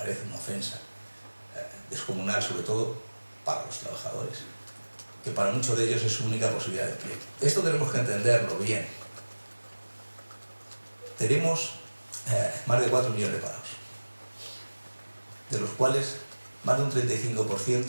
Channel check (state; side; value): inverted; both; correlation -1.00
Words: una ofensa descomunal, sobre todo para los trabajadores, que para muchos de ellos es su única posibilidad de empleo. Esto tenemos que entenderlo bien. Tenemos más de 4 millones de parados, de los cuales más de un